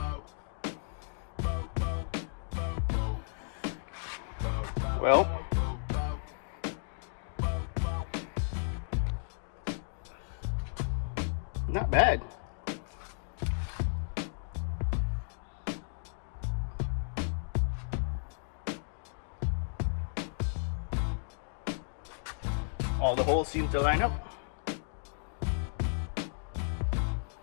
Well, not bad. All the holes seem to line up.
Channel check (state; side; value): silent; right; digital silence